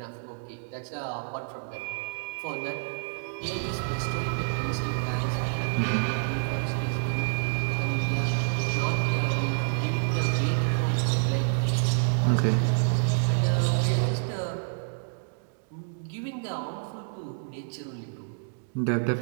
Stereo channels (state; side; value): silent; left; digital silence